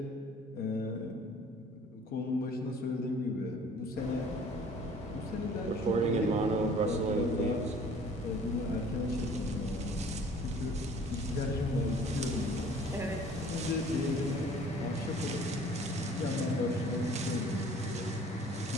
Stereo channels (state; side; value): normal; both; correlation 0.52